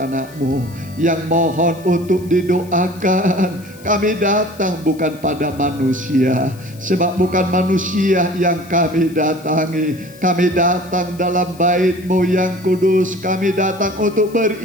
yang mohon untuk didoakan. Kami datang bukan pada manusia, sebab bukan manusia yang kami datangi. Kami datang dalam bait-Mu yang kudus. Kami datang untuk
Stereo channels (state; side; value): noise; left; hiss, 23 dB below the sound